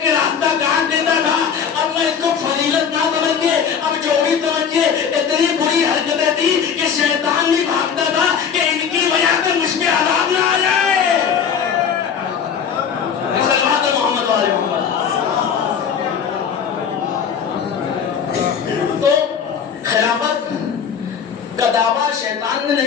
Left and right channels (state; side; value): quieter; right; 7.2 dB